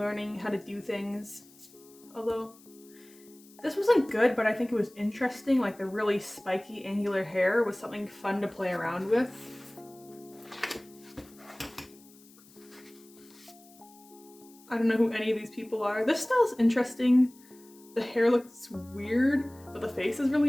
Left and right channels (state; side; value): noise; left; hiss, 25 dB below the sound